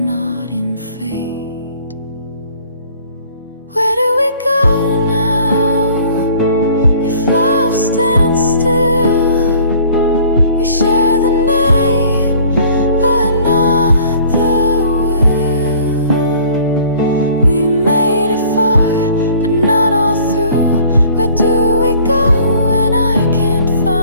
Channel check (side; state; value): both; inverted; correlation -0.53